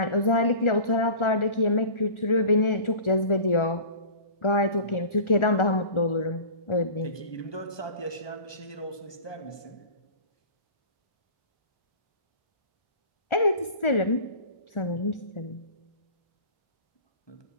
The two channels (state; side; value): late; right; 1.4 ms